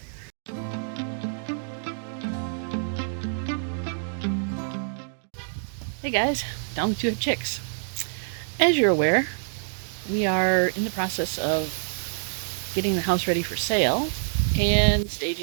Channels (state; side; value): silent; left; digital silence